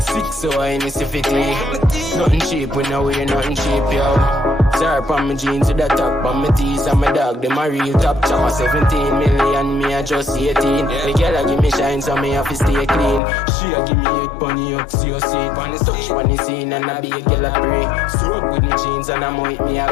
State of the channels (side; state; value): right; drops out; at 13.2 s